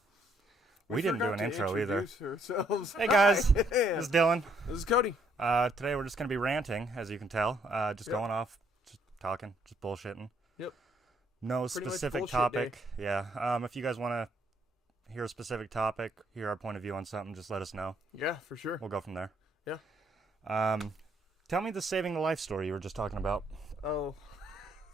We didn't do an intro either. Hey guys, this is Dylan. This is Cody. Today we're just going to be ranting, as you can tell. Going off, just talking, just bullshitting. Yep. No Pretty specific much topic. day. Yeah. If you guys want to hear a specific topic, hear our point of view on something, just let us know. Yeah, for sure. We'll go from there. Yeah. Tell me the saving the life story you were just talking about. Oh.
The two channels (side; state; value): both; normal; correlation 0.69